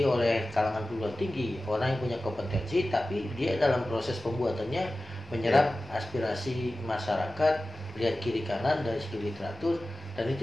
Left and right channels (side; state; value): both; normal; correlation 0.95